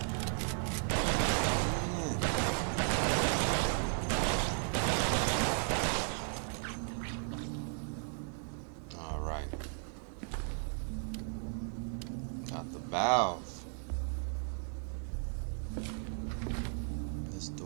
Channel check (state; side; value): silent; left; 54 dB below the other